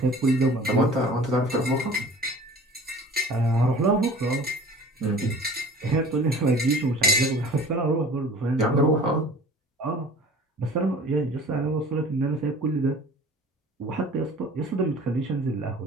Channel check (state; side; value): normal; both; correlation 0.45